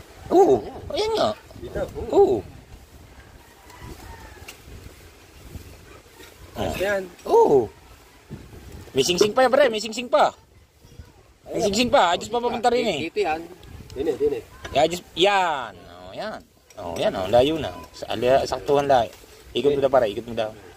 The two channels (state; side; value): identical; both; correlation 1.00